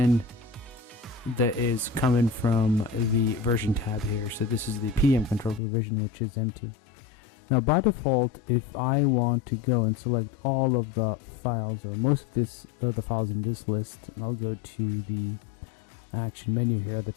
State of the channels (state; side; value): drops out; right; at 5.6 s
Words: that is coming from the version tab here. So this is the PDM control revision, which is empty. Now by default, if I want to go and select all of the files, or most of the files in this list, and I'll go to the action menu here at the